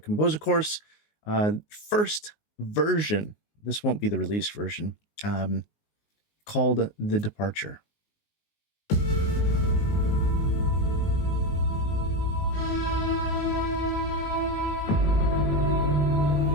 course. First version, this won't be the released version, called The Departure.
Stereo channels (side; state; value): right; late; 19 ms